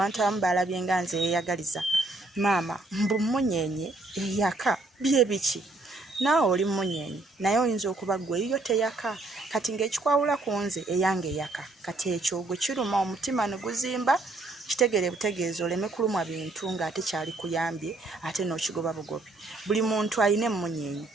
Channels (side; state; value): left; quieter; 3.0 dB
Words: abamu balabye nga nze yeeyagaliza. Maama mbu Munyenye eyaka bye biki? Naawe oli Munyenye naye oyinza okuba ggwe eyiyo teyaka kati ng'ekikwawula ku nze eyange eyaka. Kati ekyo gwe kiruma omutima ne guzimba kitegere butegeeza oleme kulumwa bintu ng'ate kyali kuyambye ate n'okigoba bugobi. Buli muntu alina emmunyenye